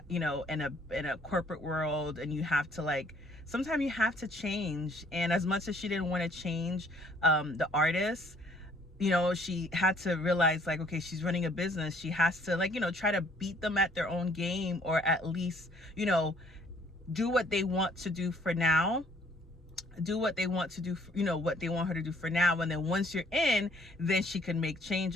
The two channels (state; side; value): normal; both; correlation 0.61